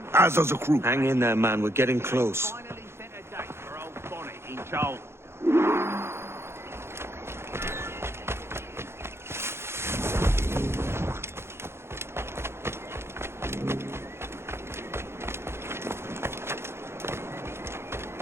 As does the crew. Hang in there, man. We're getting close. Finally set a date for old Bonnet in Charles.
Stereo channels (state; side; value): late; left; 0.12 ms